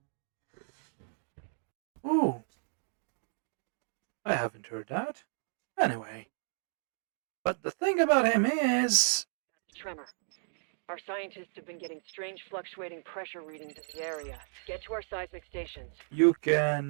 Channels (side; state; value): left; silent; digital silence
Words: ooh, I haven't heard that. Anyway, but the thing about him is, Tremor. Our scientists have been getting strange fluctuating pressure readings in the area. Get to our seismic stations. you